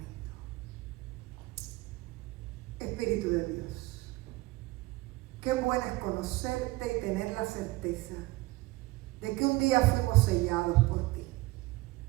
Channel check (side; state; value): left; quieter; 20.5 dB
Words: Espíritu de Dios, qué bueno es conocerte y tener la certeza de que un día fuimos sellados por ti.